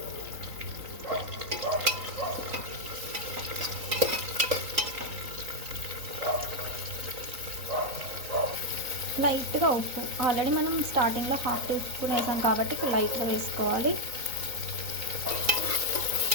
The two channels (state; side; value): late; left; 3.9 ms